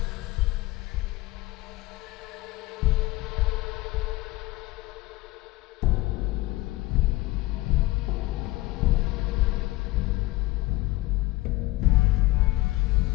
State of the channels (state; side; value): quieter; right; 19.3 dB